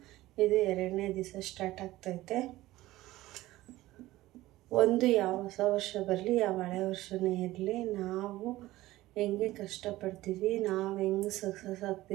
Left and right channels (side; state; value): left; quieter; 17.0 dB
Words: ಇದು ಎರಡನೇ ದಿವಸ ಸ್ಟಾರ್ಟ್ ಆಗ್ತೈತೆ. ಯಾವ ಹೊಸ ವರ್ಷ ಬರಲಿ, ಯಾವ ಹಳೆ ವರ್ಷನೇ ಇರಲಿ, ನಾವು ಹೆಂಗೆ ಕಷ್ಟಪಡ್ತೀವಿ, ನಾವು ಹೆಂಗೆ ಸಕ್ಸಸ್